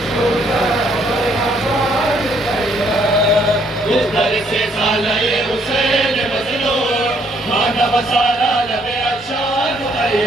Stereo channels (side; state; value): both; normal; correlation 0.67